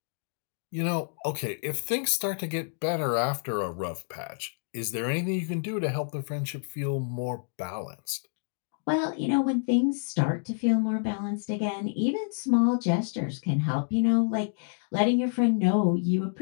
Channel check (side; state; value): right; silent; digital silence